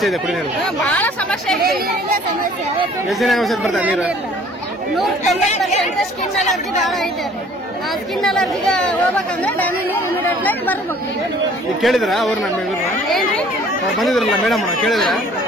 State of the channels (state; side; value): normal; both; correlation 0.54